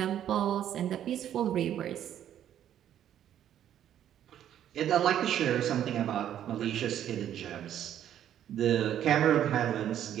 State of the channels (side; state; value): left; quieter; 10.6 dB